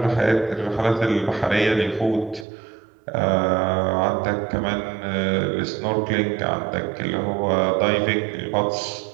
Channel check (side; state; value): left; drops out; at 2.5 s